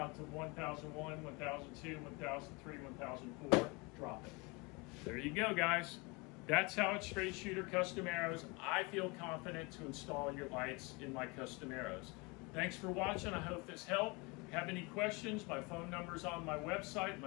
to 1001, 1002, 1003, 1004, drop it. There you go, guys. That's how it's straight shooter custom arrows. I feel confident to install your lights in my custom arrows. Thanks for watching. I hope this helped. If you have any questions, my phone number's on my website,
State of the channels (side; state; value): right; quieter; 27.7 dB